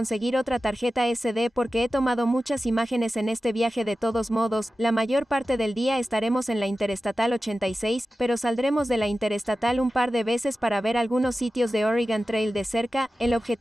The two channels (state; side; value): normal; both; correlation 0.94